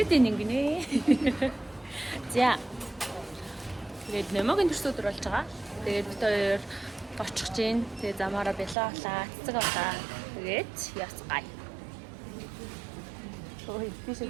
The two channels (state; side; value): drops out; left; at 8.8 s